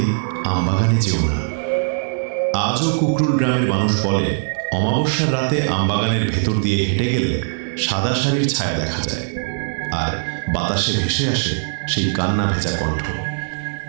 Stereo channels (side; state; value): left; silent; digital silence